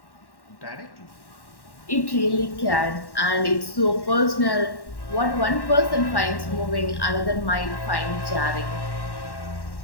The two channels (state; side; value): late; right; 1.1 ms